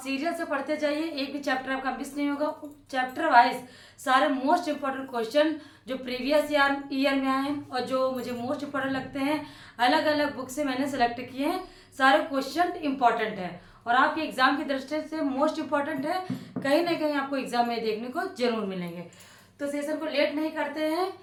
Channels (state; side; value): identical; both; correlation 1.00